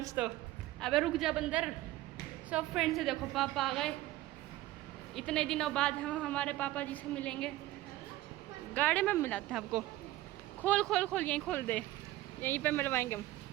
तो। अबे रुक जा बंदर। सो फ्रेंड्स, देखो पापा आ गए। इतने दिनों बाद हम हमारे पापा जी से मिलेंगे। गाड़ी में मिलाते हैं आपको। खोल खोल खोल, यहीं खोल दे, यहीं पे मिलवाएंगे हम।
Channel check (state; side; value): quieter; left; 16.4 dB